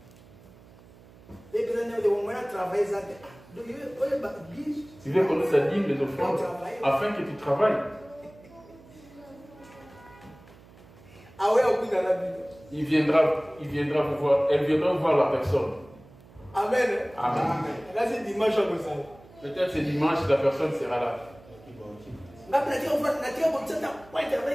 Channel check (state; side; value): noise; right; hum, 23 dB below the sound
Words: Tu veux connaître sa dîme, les offrandes, afin que tu travailles. Il viendra vous voir, elle viendra voir la personne. Amen. Amen. Là, c'est dimanche. Peut-être c'est dimanche, la personne sera là.